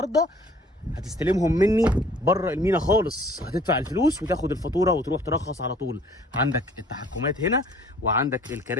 هتستلمهم مني بره المينا خالص. هتدفع الفلوس وتاخد الفاتوره وتروح ترخص على طول. عندك التحكمات هنا، وعندك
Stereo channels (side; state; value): both; normal; correlation 0.54